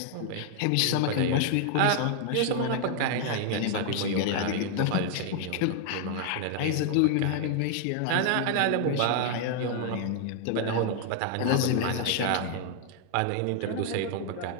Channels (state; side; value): different; both; correlation 0.00